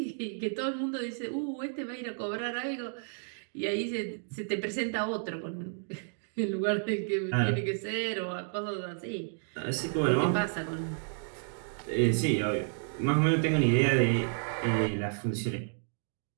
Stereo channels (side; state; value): left; silent; digital silence